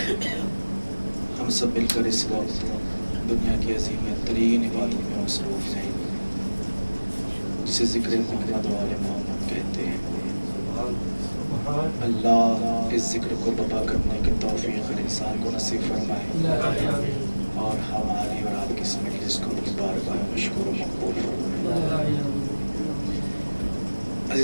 ہم سب مل کر اس وقت دنیا کی عظیم ترین عبادت میں مصروف ہیں جسے ذکر محمد و آل محمد کہتے ہیں. اللہ اس ذکر کو بپا کرنے کی توفیق ہر انسان کو نصیب فرمائے اور ہماری اور آپ کی اس مجلس کو اپنی بارگاہ میں مشکور و مقبول فرمائے.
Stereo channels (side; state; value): both; inverted; correlation -1.00